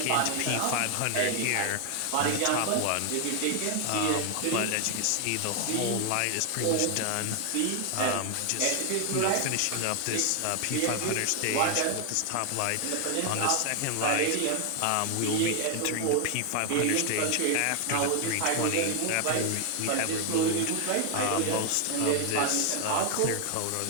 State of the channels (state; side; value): different; both; correlation 0.00